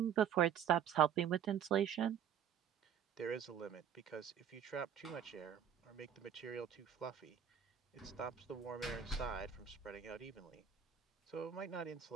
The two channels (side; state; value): left; quieter; 8.8 dB